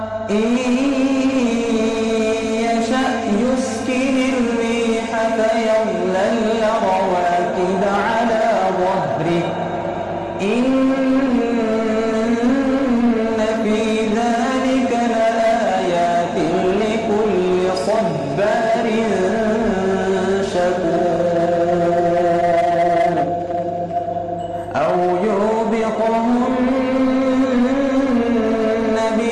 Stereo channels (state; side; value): identical; both; correlation 1.00